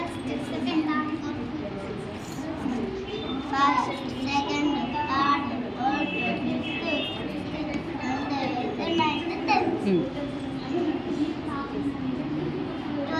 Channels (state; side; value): identical; both; correlation 1.00